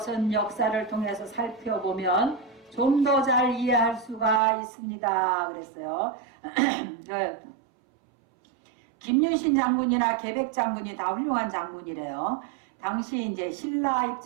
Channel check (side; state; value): left; drops out; at 4.4 s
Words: 역사를 통해서 살펴보면 좀 더 잘 이해할 수가 있습니다. 그랬어요. 김유신 장군이나 계백 장군이 다 훌륭한 장군이래요. 당시 이제 신라